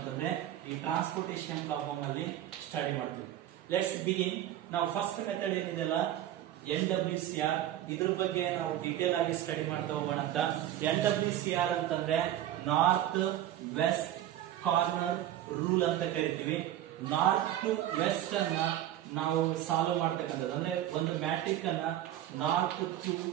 ಈ ಟ್ರಾನ್ಸ್ಪೋರ್ಟೇಷನ್ ಪ್ರಾಬ್ಲಮ್ ಅಲ್ಲಿ ಸ್ಟಡಿ ಮಾಡ್ತೀವಿ. Let's begin. ನಾವು ಫಸ್ಟ್ ಮೆಥಡ್ ಏನಿದೆಲ್ಲ NWCR, ಇದ್ರ ಬಗ್ಗೆ ನಾವು ಡೀಟೇಲ್ ಆಗಿ ಸ್ಟಡಿ ಮಾಡ್ತಾ ಹೋಗೋಣ ಅಂತ. NWCR ಅಂತಂದ್ರೆ ನಾರ್ತ್ ವೆಸ್ಟ್ ಕಾರ್ನರ್ ರೂಲ್ ಅಂತ ಕರಿತೀವಿ. ನಾರ್ತ್ ಟು ವೆಸ್ಟ್ ಅನ್ನ ನಾವು ಸಾಲ್ವ್ ಮಾಡ್ತಕ್ಕಂಥದ್ದು, ಅಂದ್ರೆ ಒಂದು ಮ್ಯಾಟ್ರಿಕ್ ಅನ್ನ ನಾರ್ತ್ ಟು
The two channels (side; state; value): left; quieter; 12.4 dB